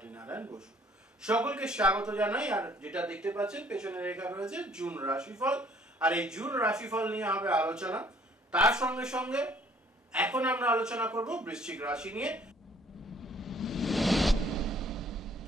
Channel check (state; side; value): normal; both; correlation 0.59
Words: নারায়ণ বসু। সকলকে স্বাগত জানাই। আর যেটা দেখতে পাচ্ছেন পেছনে লেখা রয়েছে জুন রাশিফল, আর এই জুন রাশিফল নিয়ে হবে আলোচনা। তার সঙ্গে সঙ্গে এখন আমরা আলোচনা করব বৃশ্চিক রাশি নিয়ে।